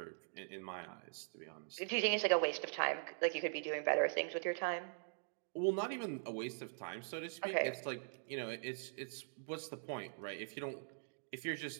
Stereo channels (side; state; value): left; silent; digital silence